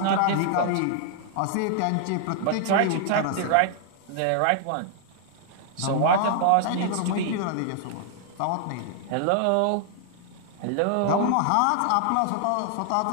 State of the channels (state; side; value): different; both; correlation 0.00